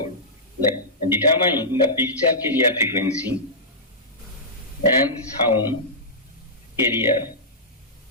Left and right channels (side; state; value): both; normal; correlation -0.15